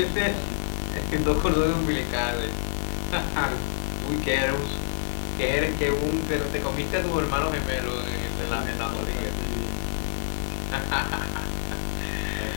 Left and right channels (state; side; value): silent; right; digital silence